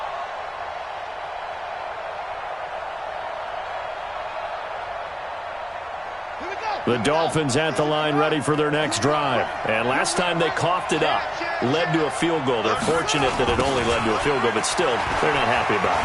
The Dolphins at the line ready for their next drive. And last time they coughed it up, led to a field goal. They're fortunate that it only led to a field goal, but still, they're not happy about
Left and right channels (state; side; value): identical; both; correlation 1.00